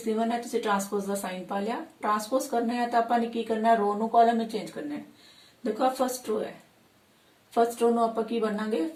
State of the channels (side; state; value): both; identical; correlation 1.00